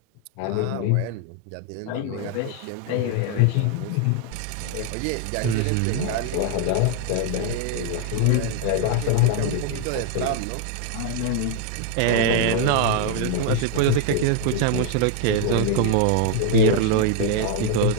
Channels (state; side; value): different; both; correlation 0.00